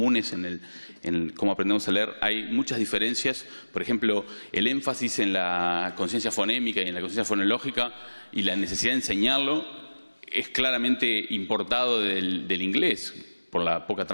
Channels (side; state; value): both; inverted; correlation -1.00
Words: en cómo aprendemos a leer, hay muchas diferencias. Por ejemplo, el énfasis en la conciencia fonémica y en la conciencia fonológica y la necesidad de enseñarlo es claramente importado del inglés, por la poca